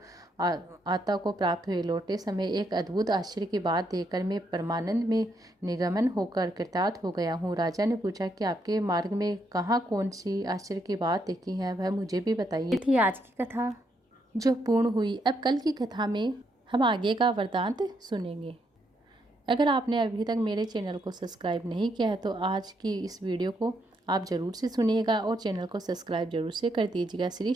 आता को प्राप्त हुए। लौटते समय एक अद्भुत आश्चर्य की बात देखकर मैं परमानंद में निगमन होकर कृतार्थ हो गया हूँ। राजा ने पूछा कि आपके मार्ग में कहाँ कौन सी आश्चर्य की बात देखी है, वह मुझे भी बताइए। ये थी आज की कथा जो पूर्ण हुई। अब कल की कथा में हम आगे का वृतांत सुनेंगे। अगर आपने अभी तक मेरे चैनल को सब्सक्राइब नहीं किया है तो आज की इस वीडियो को आप ज़रूर से सुनिएगा और चैनल को सब्सक्राइब जरूर से कर दीजिएगा। श्री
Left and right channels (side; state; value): both; normal; correlation 0.76